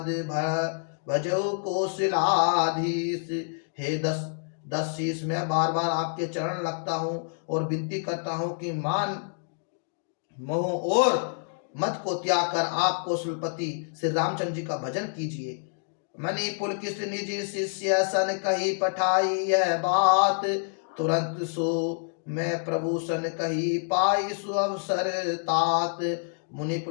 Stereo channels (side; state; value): right; silent; digital silence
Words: भजो कौशलाधीश। हे दस शीस, मैं बार बार आपके चरण लगता हूँ और विनती करता हूँ कि मान मोह और मत को त्याग कर आप कौशलपति श्री रामचंद्र जी का भजन कीजिए। मणि पुलकित निज शिष्य सन कही पठाई यह बात। तुरंत सो मैं प्रभु सन कही पाई सु अवसर तात। मुनि